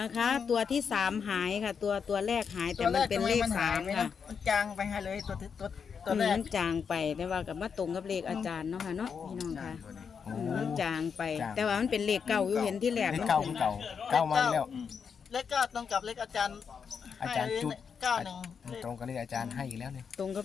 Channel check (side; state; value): right; quieter; 6.4 dB